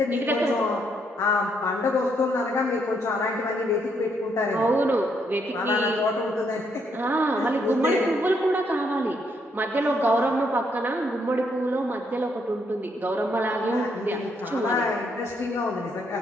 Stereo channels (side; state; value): both; normal; correlation 0.74